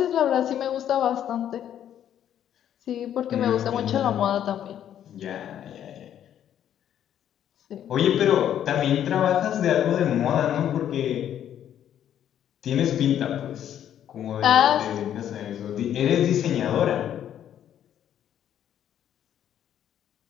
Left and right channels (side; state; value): right; quieter; 10.3 dB